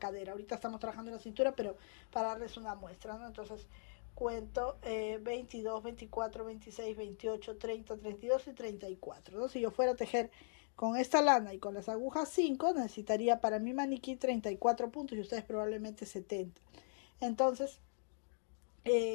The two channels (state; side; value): silent; right; digital silence